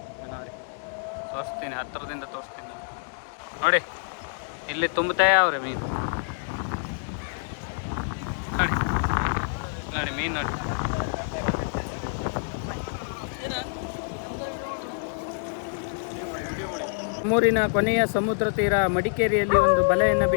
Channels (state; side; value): silent; right; digital silence